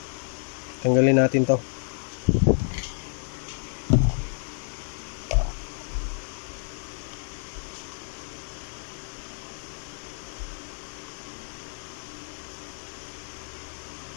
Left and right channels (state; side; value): silent; right; digital silence